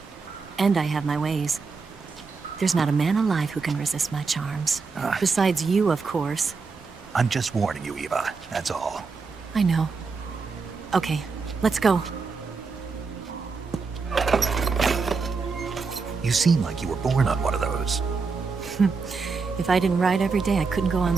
And I have my ways. There's not a man alive who can resist my charms. Besides you, of course. I'm just warning you, Eva. That's all. I know. Okay, let's go. You seem like you were born on one of those. If I didn't ride every day, I couldn't go on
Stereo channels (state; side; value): quieter; left; 4.7 dB